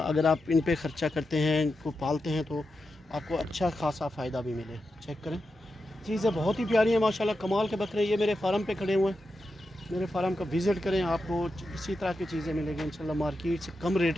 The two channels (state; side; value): normal; both; correlation 0.89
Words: आप इन पे ख़र्चा करते हैं, इनको पालते हैं, तो आपको अच्छा खासा फ़ायदा भी मिले। चेक करें, चीज़ें बहुत ही प्यारी हैं माशाल्लाह, कमाल के बकरे। ये मेरे फार्म पे खड़े हुए हैं, मेरे फार्म का विज़िट करें, आपको इसी तरह की चीज़ें मिलेगी इंशाल्लाह। मार्केट से कम रेट